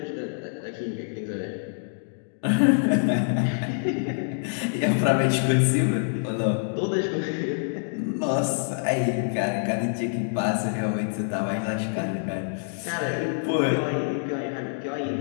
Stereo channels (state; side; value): silent; right; digital silence